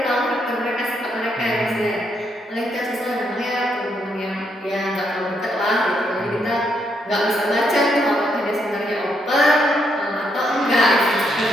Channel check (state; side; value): normal; both; correlation 0.76